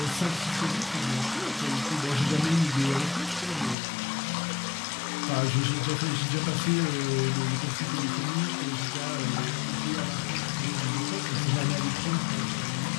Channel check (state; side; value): drops out; right; at 3.8 s